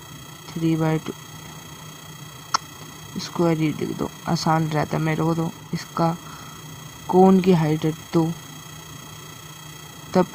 स्क्वायर ही लिख दो, आसान रहता है मेरे को। तो इसका कोन की हाइट है 2, तब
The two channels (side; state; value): both; identical; correlation 1.00